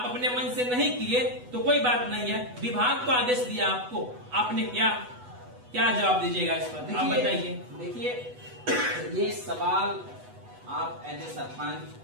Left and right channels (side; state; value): left; late; 8.1 ms